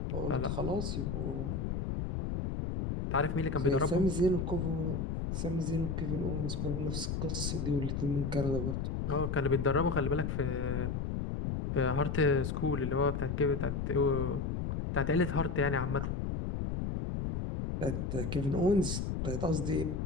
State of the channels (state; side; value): noise; left; rumble, 2 dB below the sound